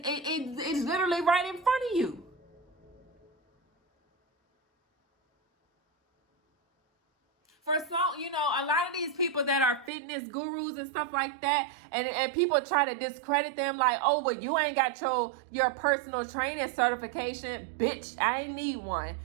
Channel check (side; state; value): left; drops out; at 9.9 s